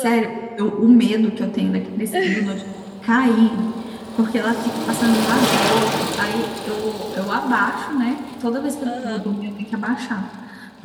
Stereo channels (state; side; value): identical; both; correlation 1.00